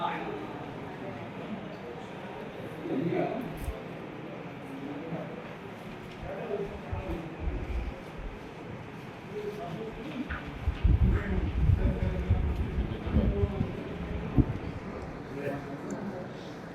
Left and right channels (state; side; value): identical; both; correlation 1.00